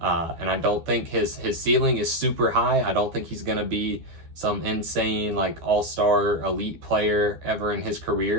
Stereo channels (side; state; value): left; late; 12 ms